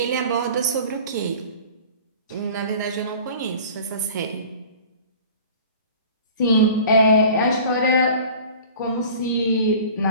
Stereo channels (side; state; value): both; inverted; correlation -0.44